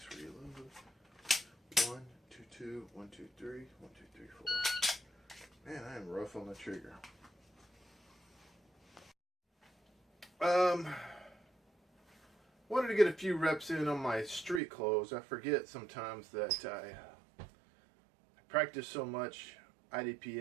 Reload. 1, 2, 2. 1, 2, 3. 1, 2, 3, 4. Man, I am rough on the trigger. Wanted to get a few reps in on my street clothes. I forget sometimes that I practice so much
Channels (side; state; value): left; drops out; at 14.6 s